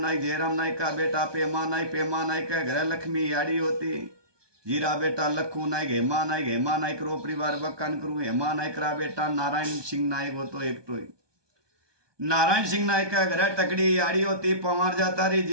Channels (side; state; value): left; late; 1.2 ms